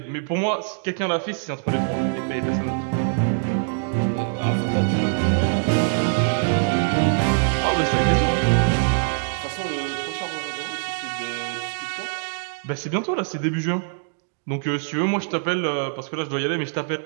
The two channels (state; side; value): silent; left; digital silence